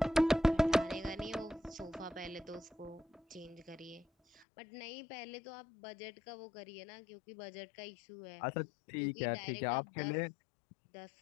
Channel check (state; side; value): drops out; right; at 4.5 s